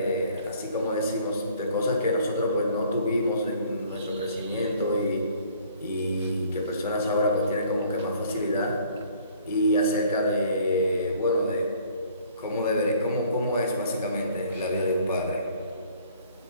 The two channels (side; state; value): both; inverted; correlation -0.56